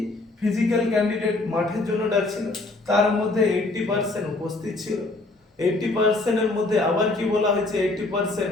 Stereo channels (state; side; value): quieter; right; 3.1 dB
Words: ফিজিক্যাল ক্যান্ডিডেট মাঠের জন্য ডাকছিল, তার মধ্যে 80% উপস্থিত ছিল। 80% এর মধ্যে আবার কি বলা হয়েছে, 80%